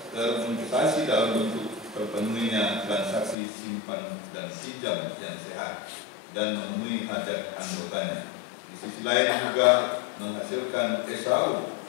termanifestasi dalam bentuk terpenuhinya transaksi simpan dan pinjam yang sehat dan memenuhi hajat anggotanya. Di sisi lain juga menghasilkan SAU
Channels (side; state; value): right; drops out; at 3.4 s